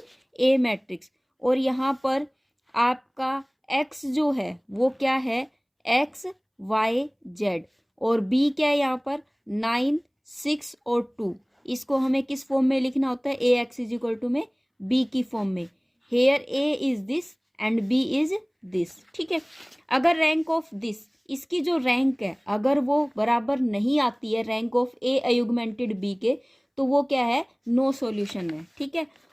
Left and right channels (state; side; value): identical; both; correlation 1.00